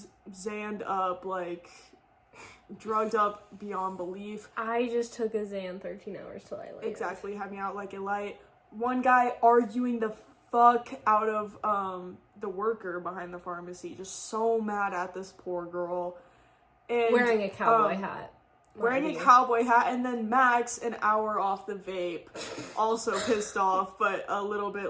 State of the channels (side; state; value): both; identical; correlation 1.00